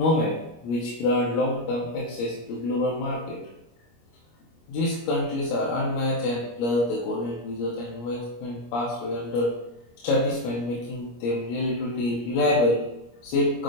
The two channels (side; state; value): right; late; 25 ms